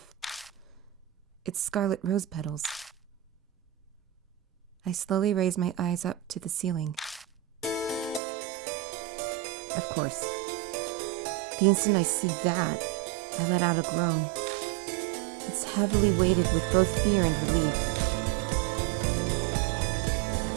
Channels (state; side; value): drops out; left; at 8.2 s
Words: It's scarlet rose petals. I slowly raise my eyes up to the ceiling. Of course. The instant I see that, I let out a groan. It's heavily weighted with both fear and relief.